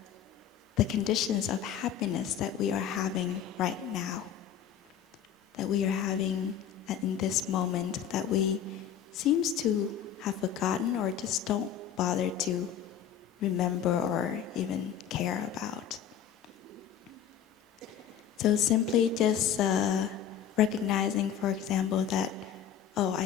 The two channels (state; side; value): quieter; right; 9.0 dB